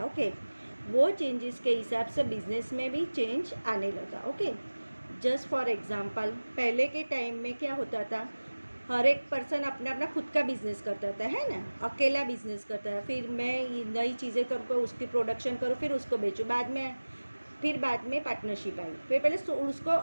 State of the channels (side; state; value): both; inverted; correlation -1.00